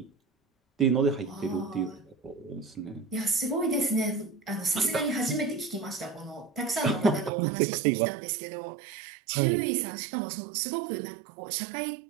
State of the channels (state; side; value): drops out; left; at 7.3 s